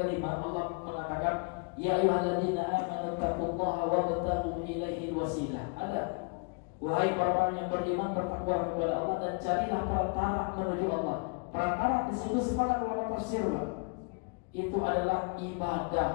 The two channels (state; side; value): quieter; right; 35.5 dB